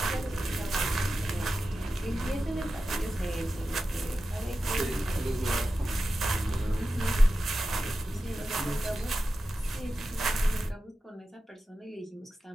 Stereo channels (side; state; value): both; normal; correlation 0.92